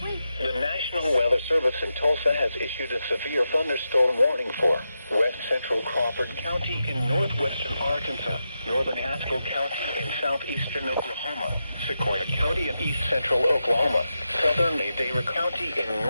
The National Weather Service in Tulsa has issued a severe thunderstorm warning for west central Crawford County in northwestern Arkansas, northern Haskell County in southeastern Oklahoma, Sequoia County in east central Oklahoma, southern Madera County in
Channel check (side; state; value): both; inverted; correlation -0.88